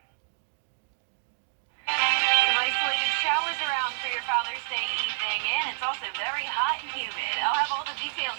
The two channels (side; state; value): left; silent; digital silence